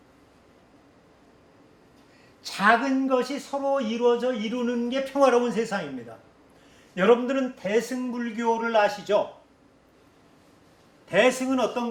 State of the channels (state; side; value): identical; both; correlation 1.00